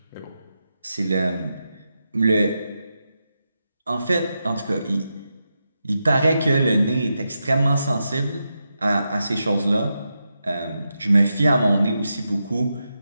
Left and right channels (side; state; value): both; inverted; correlation -0.87